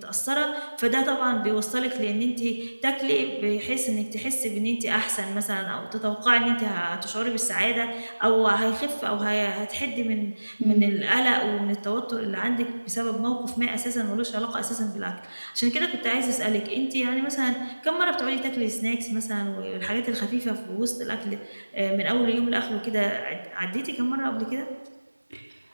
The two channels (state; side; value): inverted; both; correlation -1.00